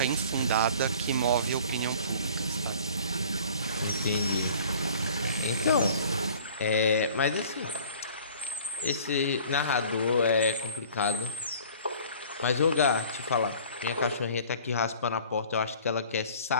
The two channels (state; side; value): inverted; both; correlation -0.49